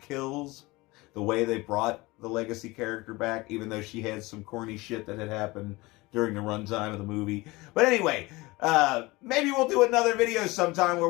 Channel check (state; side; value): quieter; right; 22.0 dB